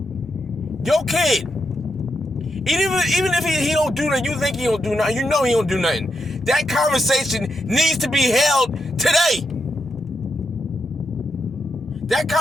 Your kid. Even if he don't do nothing, you think he don't do nothing, you know he don't do nothing. That conversation needs to be held today. That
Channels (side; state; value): both; normal; correlation 0.83